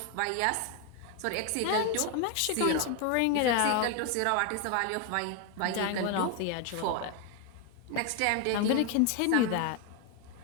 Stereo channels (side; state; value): both; different; correlation 0.01